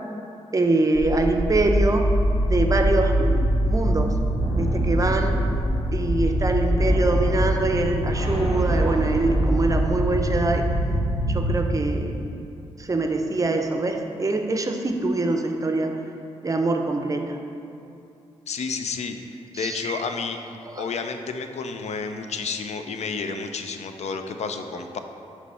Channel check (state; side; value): normal; both; correlation 0.78